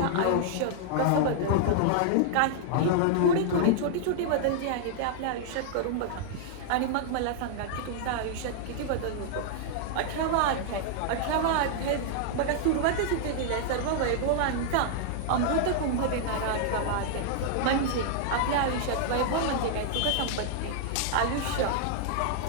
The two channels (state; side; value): different; both; correlation -0.01